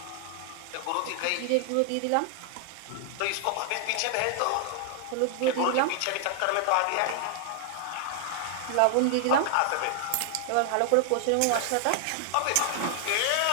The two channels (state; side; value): different; both; correlation 0.00